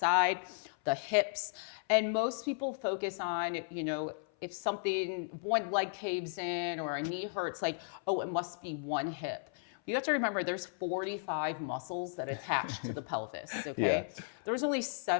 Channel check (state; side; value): silent; right; 54 dB below the other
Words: the hips. And most people focus on, you know, if something, one leg caves in or a knee hurts, like, oh, it must be one hip. You have to remember there's 45 muscles that attach to the pelvis, okay? Yeah. There's only